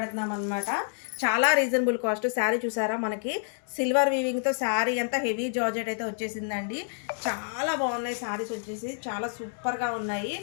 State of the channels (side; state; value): right; silent; digital silence